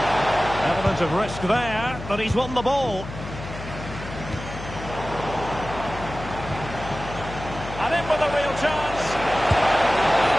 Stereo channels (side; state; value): left; noise; hum, 10 dB below the sound